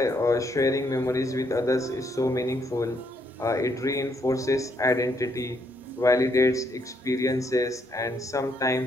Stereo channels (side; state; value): both; normal; correlation 0.73